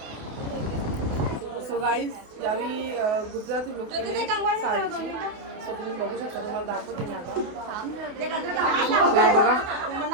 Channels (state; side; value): late; left; 28 ms